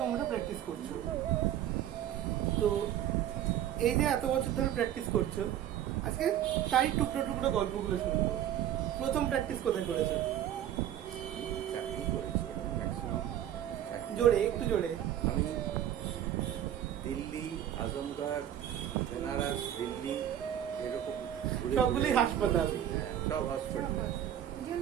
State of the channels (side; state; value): left; quieter; 11.0 dB